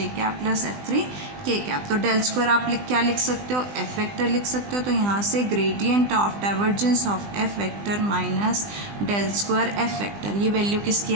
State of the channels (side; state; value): left; late; 20 ms